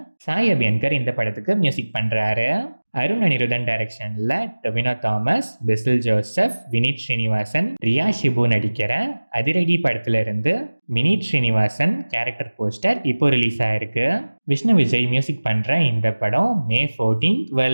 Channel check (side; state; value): both; inverted; correlation -1.00